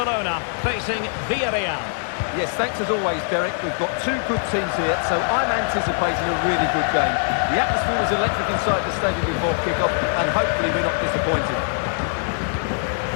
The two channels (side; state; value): right; silent; digital silence